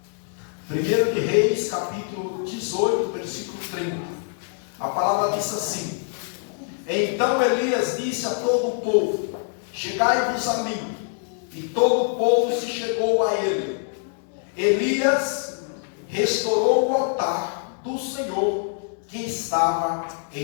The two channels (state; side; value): silent; right; digital silence